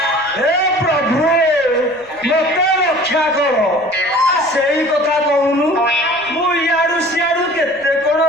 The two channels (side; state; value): right; noise; rumble, 28 dB below the sound